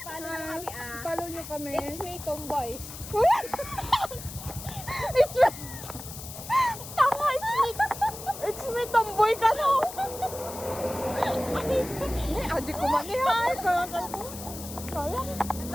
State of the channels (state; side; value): noise; left; hiss, 12 dB below the sound